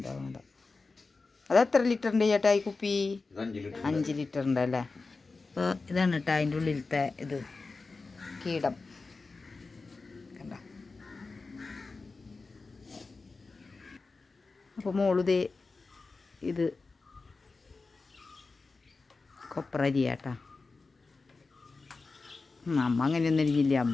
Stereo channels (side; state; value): right; quieter; 3.9 dB